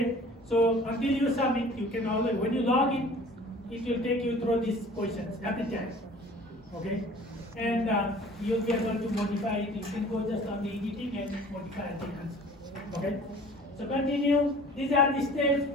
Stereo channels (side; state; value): both; normal; correlation 0.47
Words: So until you submit, you can always, when you log in, it will take you through these questions every time. Okay? And you'll be able to modify it. You can go just on the editing and modify the answer. Okay? So continue. These are the steps.